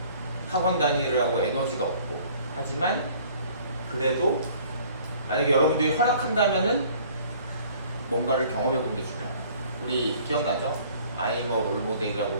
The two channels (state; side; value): inverted; both; correlation -0.54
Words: 학원 다니느라고 에너지가 없고 하지만 그래도 만약에 여러분들이 허락한다면은 뭔가를 경험해보는 게 중요해요. 우리 기억나죠? 아이머 롤모델이라고